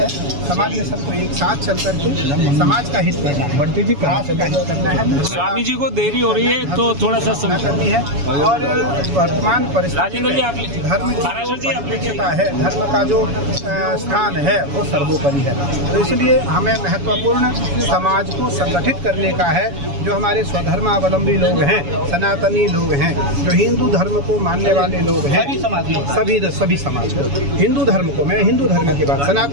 समाज में सबको एक साथ चल करके समाज का हित करना है, बढ़ती थी राष्ट्र का हित करना है। स्वामी जी को देरी हो रही है तो थोड़ा सा समय करनी है। और वर्तमान परिस्थिति में धर्म का है, धर्म का जो स्थान है वो सर्वोपरि है। तो इसलिए हमें महत्वपूर्ण समाज को संगठित करने का है। जो हमारे स्वधर्मावलंबी लोग हैं, सनातनी लोग हैं, जो हिंदू धर्म को मानने वाले लोग हैं, सभी समाज को, हिंदू धर्म को, मैं हिंदू धर्म की बात,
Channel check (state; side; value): late; left; 7.1 ms